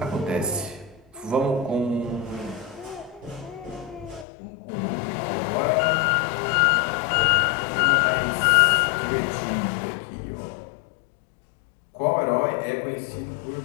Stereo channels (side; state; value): right; drops out; at 4.2 s